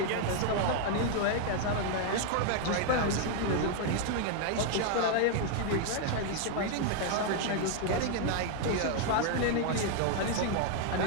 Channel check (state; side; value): different; both; correlation 0.00